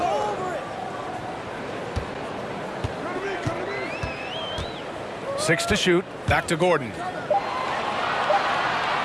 Six to shoot. Back to Gordon.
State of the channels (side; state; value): both; identical; correlation 1.00